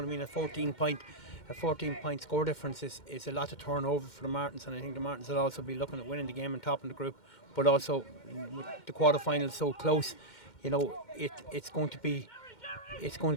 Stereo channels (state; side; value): late; right; 2.1 ms